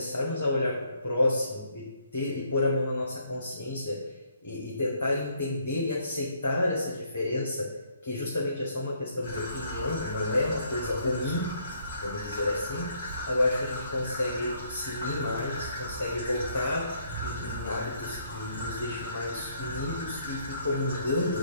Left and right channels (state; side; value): inverted; both; correlation -0.68